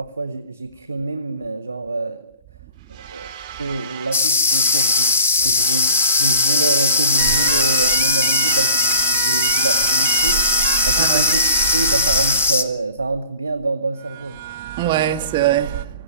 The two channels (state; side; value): inverted; both; correlation -0.44